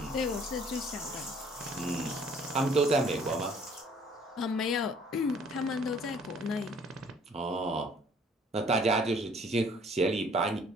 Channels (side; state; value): both; normal; correlation 0.58